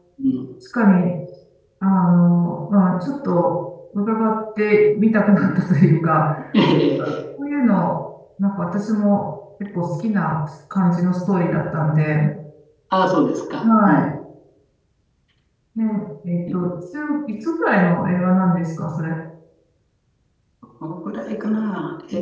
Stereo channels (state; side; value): identical; both; correlation 1.00